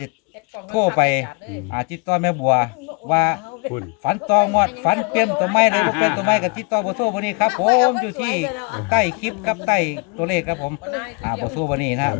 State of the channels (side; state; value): right; quieter; 32.6 dB